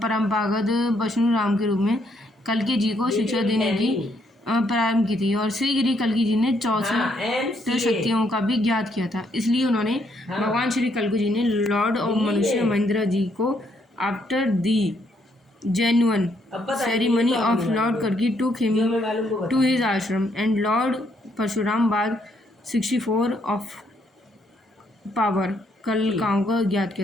परंपरागत परशुराम के रूप में कल्कि जी को शिक्षा देने की प्रारंभ की थी और शीघ्र ही कल्कि जी ने 64 शक्तियों का भी ज्ञात किया था। इसलिए उन्होंने भगवान श्री कल्कि जी ने लॉर्ड ऑफ मनुष्य महेंद्र जी को after the genuine ceremony of Lord Kalki took him to his ashram and Lord Parshuram बाद 64 of power कलकाओं का ज्ञात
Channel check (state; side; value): normal; both; correlation 0.72